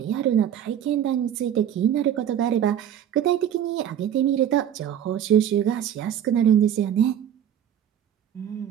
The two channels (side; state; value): left; quieter; 10.0 dB